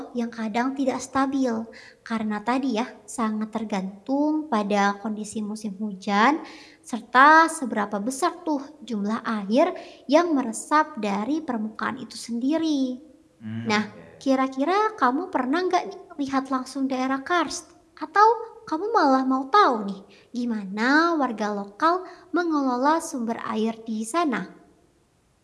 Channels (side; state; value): both; identical; correlation 1.00